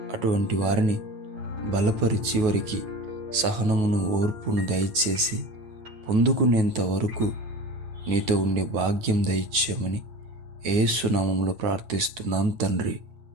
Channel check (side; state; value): left; late; 9.3 ms